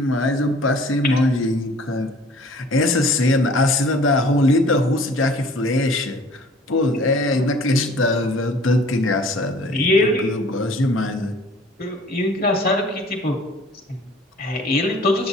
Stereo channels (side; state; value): both; normal; correlation 0.50